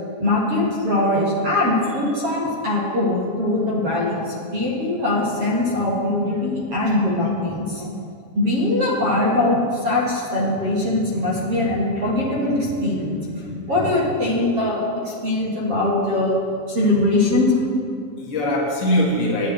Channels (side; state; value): left; late; 7.4 ms